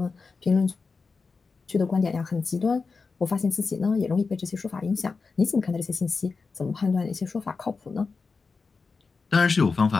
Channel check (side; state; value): right; quieter; 4.6 dB